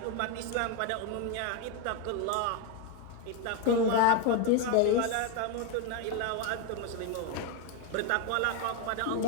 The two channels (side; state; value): both; different; correlation 0.02